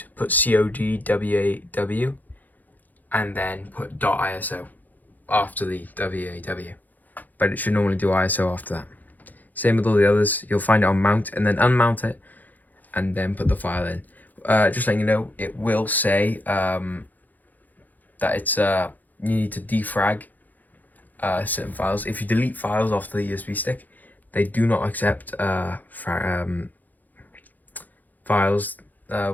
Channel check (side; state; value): right; late; 0.083 ms